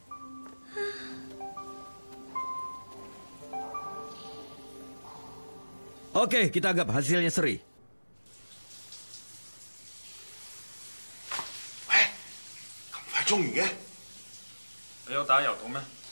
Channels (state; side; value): inverted; both; correlation -1.00